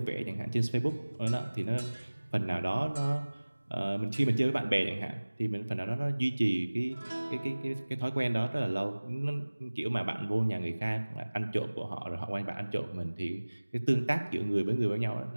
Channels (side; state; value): both; inverted; correlation -1.00